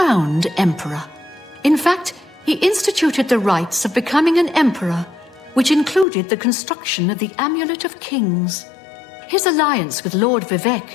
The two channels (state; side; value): drops out; right; at 6.1 s